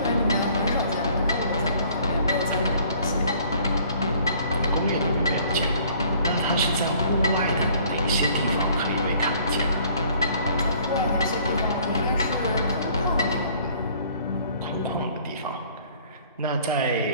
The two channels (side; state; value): both; inverted; correlation -0.57